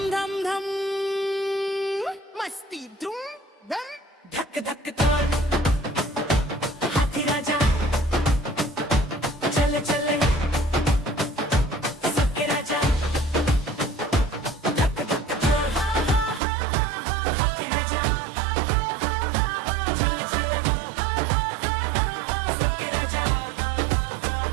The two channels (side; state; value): left; drops out; at 16.4 s